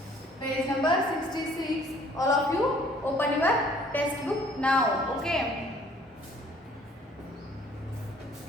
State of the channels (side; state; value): both; normal; correlation 0.57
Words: page number 66. All of you open your textbook now. Okay,